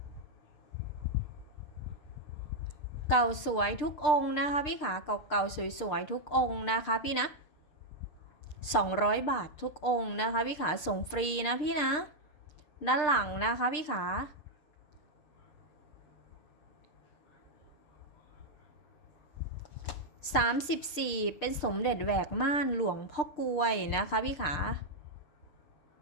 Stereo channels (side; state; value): right; late; 6.6 ms